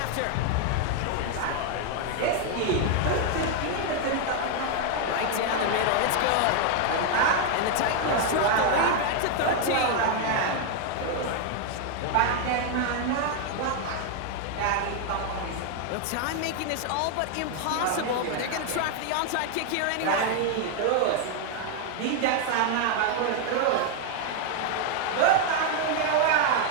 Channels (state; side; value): different; both; correlation 0.00